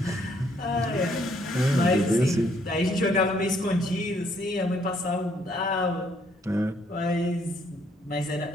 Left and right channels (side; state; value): both; normal; correlation 0.68